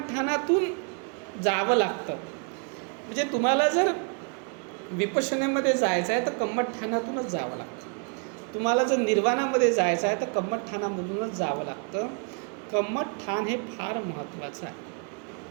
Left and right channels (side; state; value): left; quieter; 39.0 dB